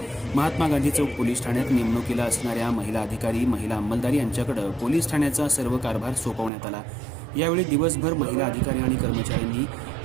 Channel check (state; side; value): drops out; left; at 6.5 s